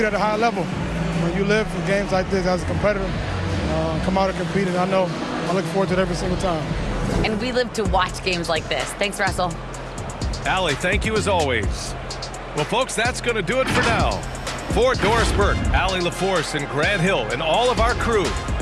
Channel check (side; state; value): both; identical; correlation 1.00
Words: at a high level. When you live for games like this as a competitor, come out and compete, and I look forward to it every single time. And we live to watch games like this. Thanks, Russell. Allie, thank you as always. Well, folks, that's going to do it for now. For Doris Burke, Allie LaForce, and Grant Hill, and all of our crew,